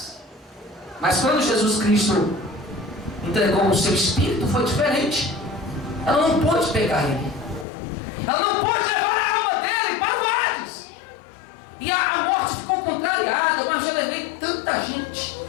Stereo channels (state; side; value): drops out; right; at 7.7 s